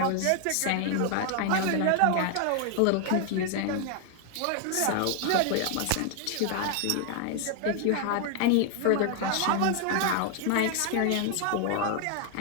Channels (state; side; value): different; both; correlation 0.00